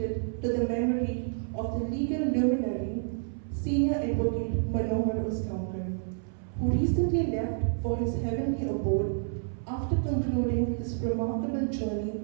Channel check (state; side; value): silent; left; 58 dB below the other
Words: to the memory of the legal luminary, Senior Advocate MANOHAR USGAONKAR, who recently left for his heavenly abode after concluding his remarkable journey